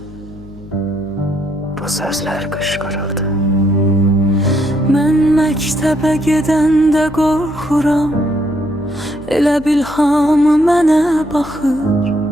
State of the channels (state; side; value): noise; left; hum, 19 dB below the sound